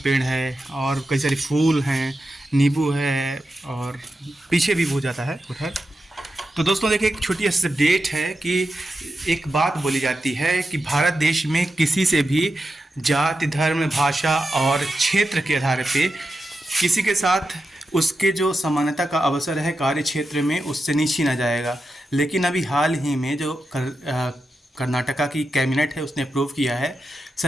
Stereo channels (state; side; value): normal; both; correlation 0.89